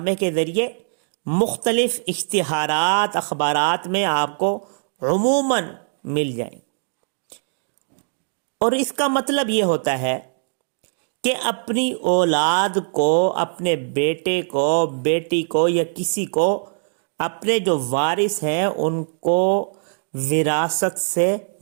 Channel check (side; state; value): left; silent; digital silence